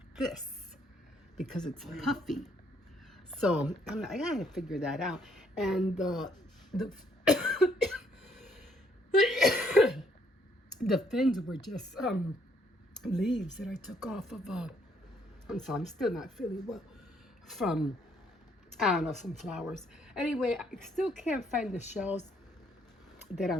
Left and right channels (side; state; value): both; normal; correlation 0.68